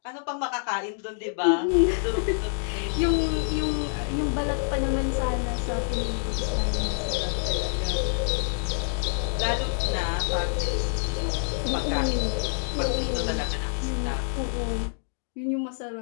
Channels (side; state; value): right; silent; digital silence